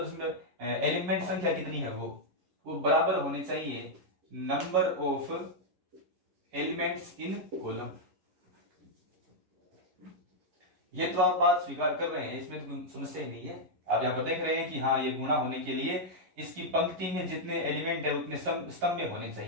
उसमें एलिमेंट संख्या कितनी है वो बराबर होनी चाहिए number of elements in column. ये तो आप बात स्वीकार कर रहे हैं, इसमें तो कोई समस्या ही नहीं है। आप यहाँ पर देख रहे हैं कि हाँ, ये गुणा होने के लिए इसकी पंक्ति में जितने एलिमेंट है उतने स्तंभ में होने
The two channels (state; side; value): late; left; 11 ms